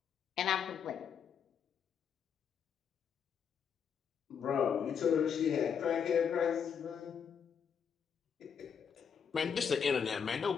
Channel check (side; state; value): right; quieter; 7.2 dB